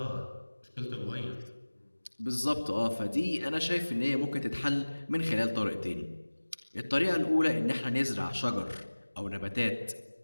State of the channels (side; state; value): both; inverted; correlation -1.00